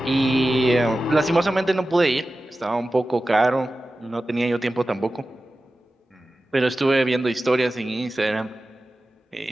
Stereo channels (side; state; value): both; normal; correlation 0.94